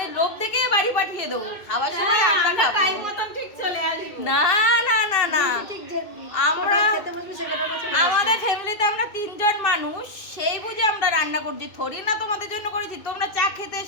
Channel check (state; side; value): late; right; 2.6 ms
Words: লোভ দেখে বাড়ি পাঠিয়ে দেবো, খাবার সময় আমরা খাবো। টাইম মতন ঠিক চলে আসবো। না না না না, ঠিক যে আমরা খেতে বসবি সেখানে আমরা চলে আমাদের ফ্যামিলিতে আমরা 3 জন মানুষ, সেই বুঝে আমরা রান্না করছি, থরি না তোমাদের জন্য করেছি। তোমরা চা খেতে